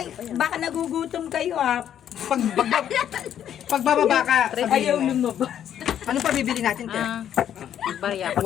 baka nagugutom kayo ha. Pagbababa ka, Ayaw sabihin mo. lumabas. Ano pa bibili natin, Te? Bariya pa.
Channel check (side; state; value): right; quieter; 10.0 dB